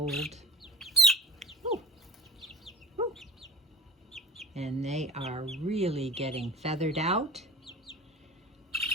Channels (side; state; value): both; normal; correlation 0.35